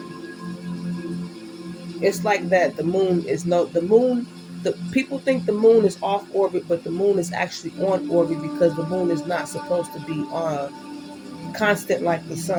it's like that. The moon is no, the moon. The people think the moon is off orbit, but the moon is actually on orbit because the moon is not supposed to be constant like the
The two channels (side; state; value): both; identical; correlation 1.00